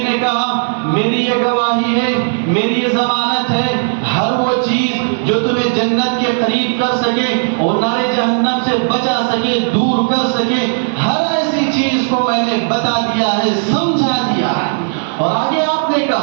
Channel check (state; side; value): silent; left; digital silence